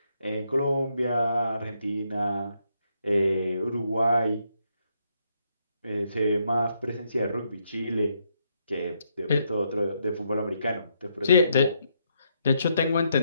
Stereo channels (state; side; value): inverted; both; correlation -0.76